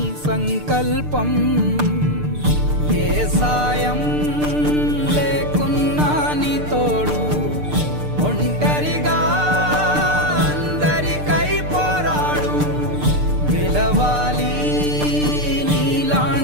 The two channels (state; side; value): late; left; 6.7 ms